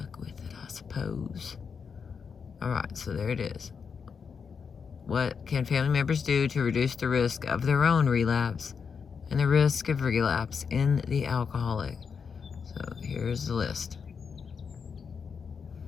with it, I suppose. Alright, so there it is. What can family members do to reduce the risk of their own relapse and the risk of relapse in the alcoholic? So here's the list.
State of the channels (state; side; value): quieter; right; 6.1 dB